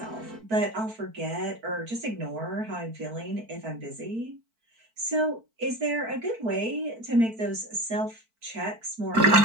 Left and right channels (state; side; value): late; left; 4.5 ms